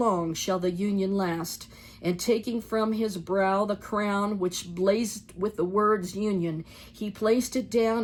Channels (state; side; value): identical; both; correlation 1.00